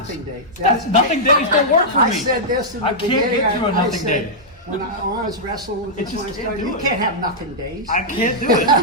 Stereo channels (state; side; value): normal; both; correlation -0.09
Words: day. That's nothing days don't work for me. I said this in the I can't beginning. get through a I nothing said, day. When I was wrestling with It this, just when I can't started, do you it. can't have nothing days. I can't do it.